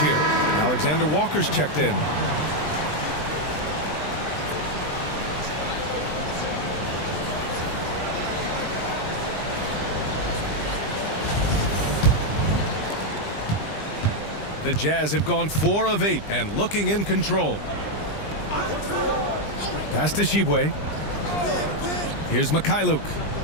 Alexander Walker's checked in. The Jazz have gone 4 of 8 and looking in control. Pass to Shibwe. Here's Mikhailuk.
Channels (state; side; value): late; right; 20 ms